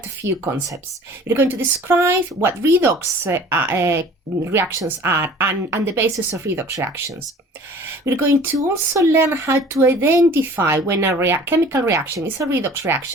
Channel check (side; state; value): both; normal; correlation 0.47